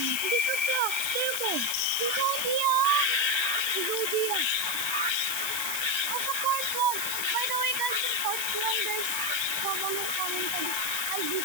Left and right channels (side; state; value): left; noise; hiss, 1 dB below the sound